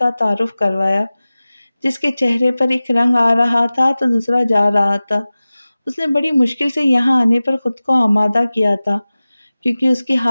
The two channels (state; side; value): inverted; both; correlation -0.97